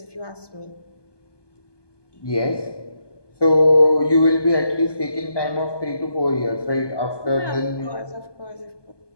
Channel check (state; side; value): late; right; 1.2 ms